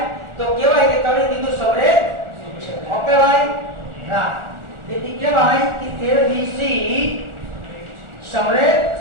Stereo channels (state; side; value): late; left; 1.4 ms